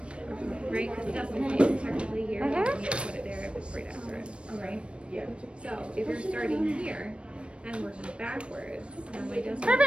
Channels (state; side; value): late; left; 0.059 ms